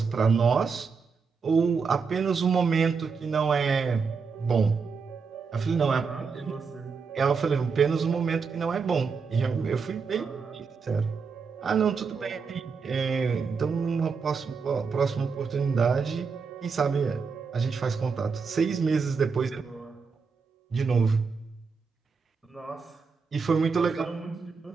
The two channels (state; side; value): quieter; left; 5.2 dB